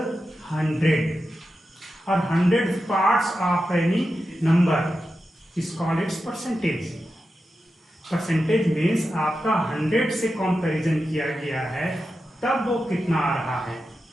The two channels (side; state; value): both; normal; correlation 0.90